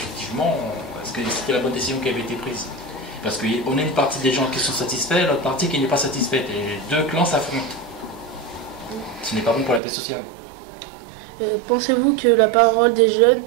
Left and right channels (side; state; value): left; drops out; at 9.8 s